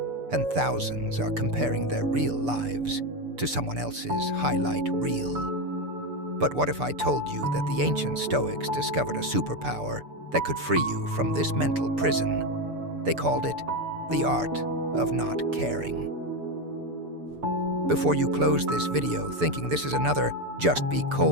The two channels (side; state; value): left; late; 6.9 ms